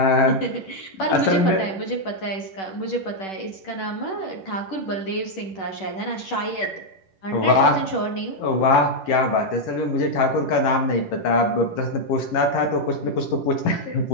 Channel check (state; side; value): late; right; 10 ms